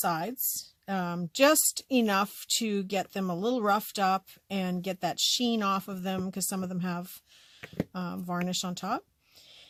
just enough to get them a little roughed up and get that sheen off of them, because some of them have varnish on top.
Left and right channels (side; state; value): both; identical; correlation 1.00